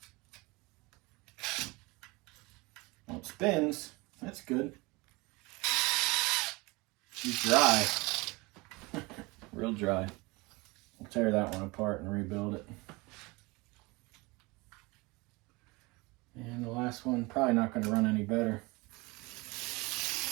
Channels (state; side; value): quieter; left; 24.5 dB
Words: Well, it spins. That's good. She's dry. Real dry. We'll tear that one apart and rebuild it. And the last one, probably not going to run any better.